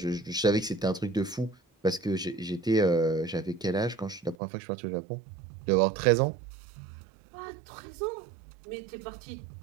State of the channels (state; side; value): drops out; left; at 4.4 s